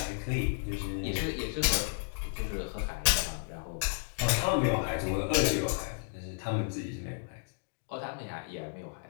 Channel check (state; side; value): silent; right; digital silence